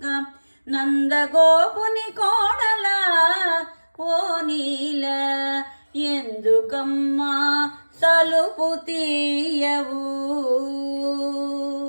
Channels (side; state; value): both; inverted; correlation -1.00